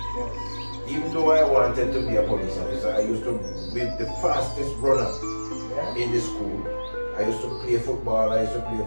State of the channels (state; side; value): inverted; both; correlation -1.00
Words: Even though I wanted to be a police officer, I used to be the fastest runner in the school. I used to play football, I used to play